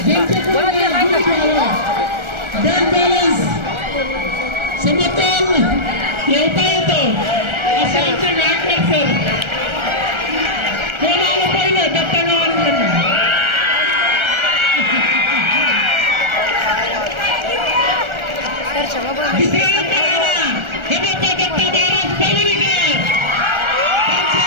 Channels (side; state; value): left; late; 1.3 ms